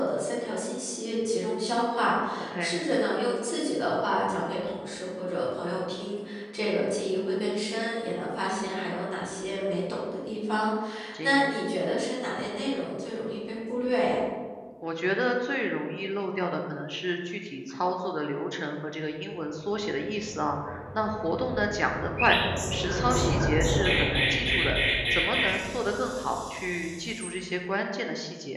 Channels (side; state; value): both; identical; correlation 1.00